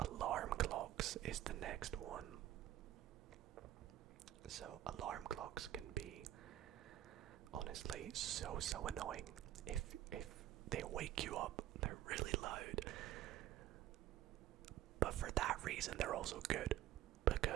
clocks is the next one. So alarm clocks can be honestly so annoying. If they wake you up, they're really loud. But for that reason, they're also good,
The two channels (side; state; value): left; quieter; 13.0 dB